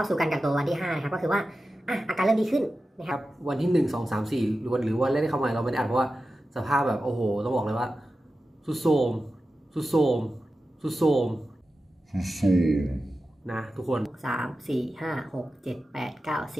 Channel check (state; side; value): normal; both; correlation 0.93